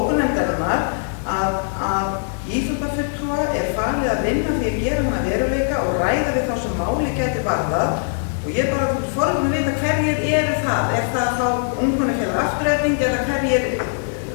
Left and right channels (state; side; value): silent; right; 65 dB below the other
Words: að íþróttafulltrúa er falið að vinna því að gera hana veruleika og ræða við þá sem máli gæti varðað og ég bara forðum að vita hverjir eru það. Er það þá ungmennafélag Afturelding eða hverjir